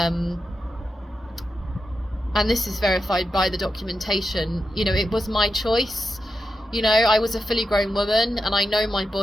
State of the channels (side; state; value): both; normal; correlation 0.87